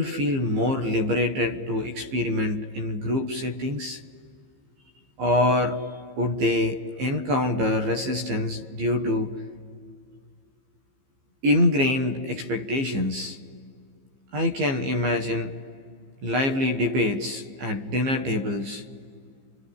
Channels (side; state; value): left; late; 15 ms